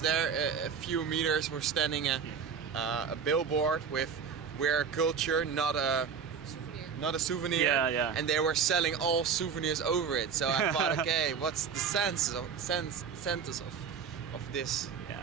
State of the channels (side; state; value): left; quieter; 6.5 dB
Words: a few meters we're standing a billboard with "We're culture, not a souvenir." And they were selling all souvenirs over it. So I thought, okay, what's the sense of this?